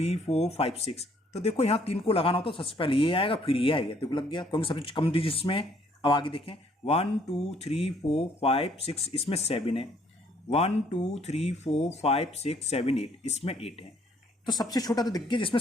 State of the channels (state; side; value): normal; both; correlation 0.64